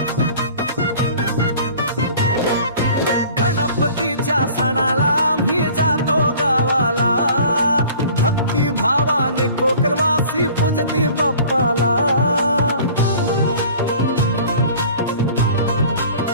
सणाला मी जातो गावाला, भक्ती भावाने कोकणवासी पूजती बाप्पाला।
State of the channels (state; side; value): inverted; both; correlation -0.47